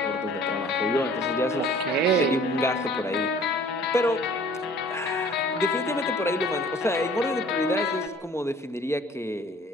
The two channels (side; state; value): both; normal; correlation 0.51